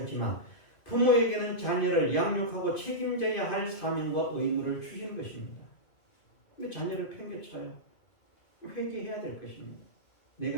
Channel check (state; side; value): late; right; 2.5 ms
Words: 부모에게는 자녀를 양육하고 책임져야 할 사명과 의무를 주시는 것입니다. 근데 자녀를 팽개쳐요. 회개해야 될 것입니다.